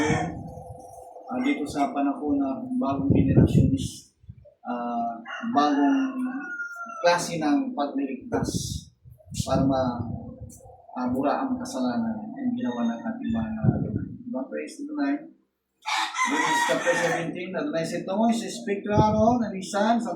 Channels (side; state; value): both; identical; correlation 1.00